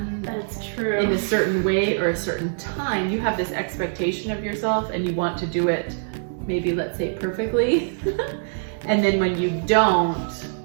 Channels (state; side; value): silent; left; digital silence